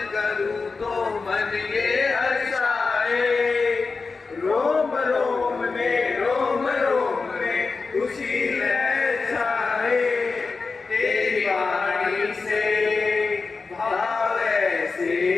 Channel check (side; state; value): right; quieter; 4.3 dB